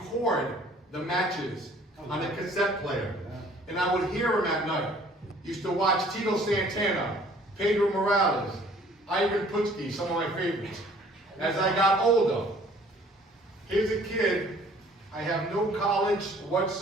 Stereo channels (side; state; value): both; normal; correlation 0.55